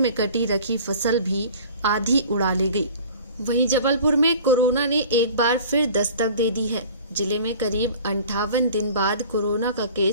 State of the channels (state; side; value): inverted; both; correlation -0.44